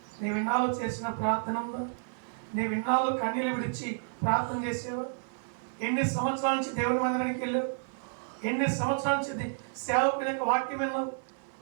నీవిన్నాళ్ళు చేసిన ప్రార్థన ఉందా, నీవిన్నాళ్ళు కన్నీళ్ళు విడిచి ప్రార్థన చేసేవా? ఎన్ని సంవత్సరాల నుంచి దేవుని మందిరానికి వెళ్ళావు? ఎన్ని సంవత్సరాల నుంచి సేవకుని యొక్క వాక్యం విన్నావు?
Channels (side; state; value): left; silent; 57 dB below the other